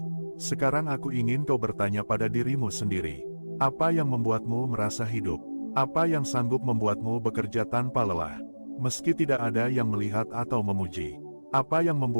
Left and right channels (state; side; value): inverted; both; correlation -1.00